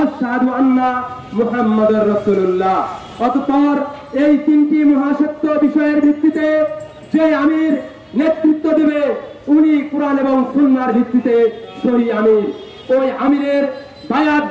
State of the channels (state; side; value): identical; both; correlation 1.00